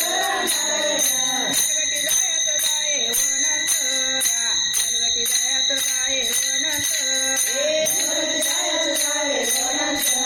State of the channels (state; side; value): identical; both; correlation 1.00